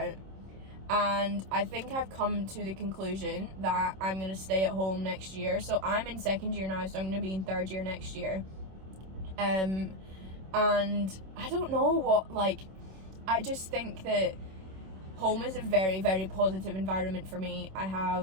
and I think I've come to the conclusion that I'm going to stay at home next year. So I'm in second year now, so I'm going to be in third year next year. And I don't know what, like, I just think that home is a very positive environment for me. I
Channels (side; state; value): left; late; 26 ms